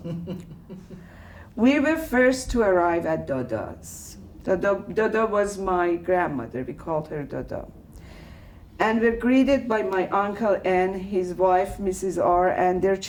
we were first to arrive at Dada's. Dada was my grandmother. We called her Dada. and were greeted by my uncle N, his wife Mrs. R, and their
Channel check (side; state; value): both; identical; correlation 1.00